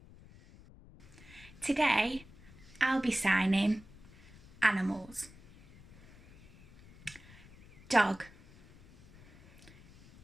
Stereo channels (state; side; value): noise; left; rumble, 22 dB below the sound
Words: Today I'll be signing animals. Dog,